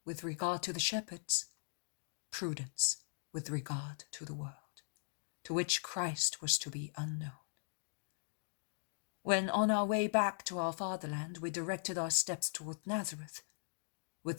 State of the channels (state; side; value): silent; right; digital silence